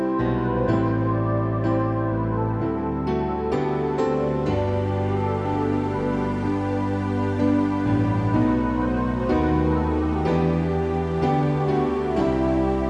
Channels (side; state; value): both; identical; correlation 1.00